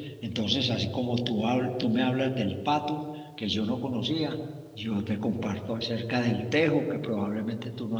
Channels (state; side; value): identical; both; correlation 1.00